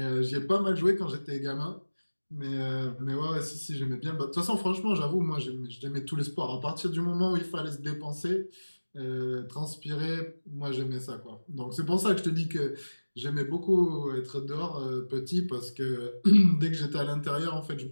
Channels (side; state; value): both; inverted; correlation -1.00